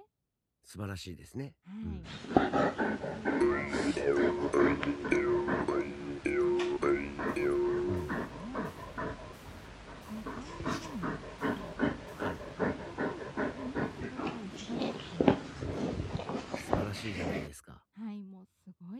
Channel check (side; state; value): both; identical; correlation 1.00